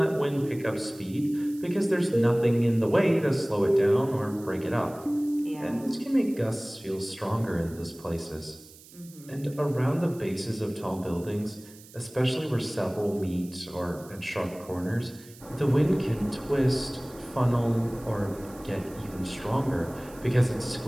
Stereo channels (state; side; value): noise; right; hiss, 22 dB below the sound